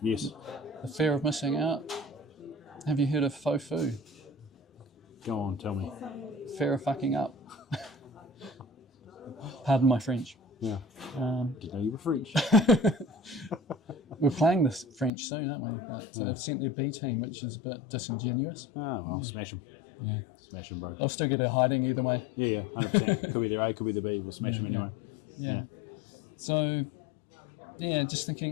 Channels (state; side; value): drops out; right; at 15.1 s